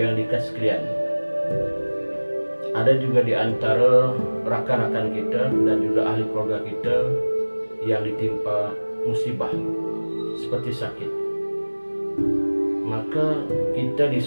dikasih sekalian, ada juga di antara rakan-rakan kita dan juga ahli keluarga kita yang ditimpa musibah seperti sakit. Maka kita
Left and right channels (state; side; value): inverted; both; correlation -1.00